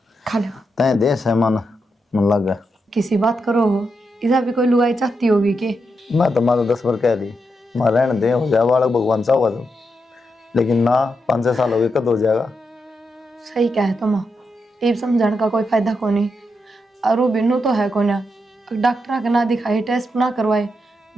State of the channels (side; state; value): both; normal; correlation 0.84